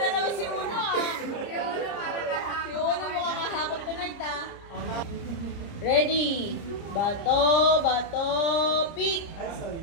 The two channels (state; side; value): late; right; 30 ms